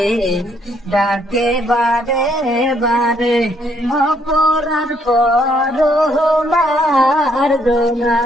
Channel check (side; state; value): both; normal; correlation 0.69